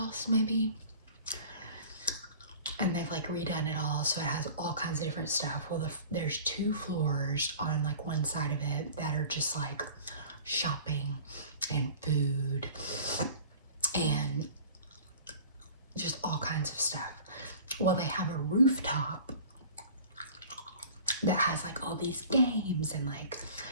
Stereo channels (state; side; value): inverted; both; correlation -0.44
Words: maybe. And they've like redone it all. So it has all kinds of different stuff. Well, there's 2 floors on like one side of it that are just like shopping and food and kinds of stuff. Well, they have a rooftop that has like all these games and like